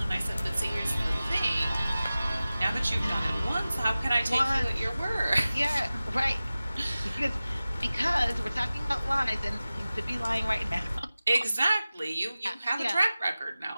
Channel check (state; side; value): inverted; both; correlation -0.97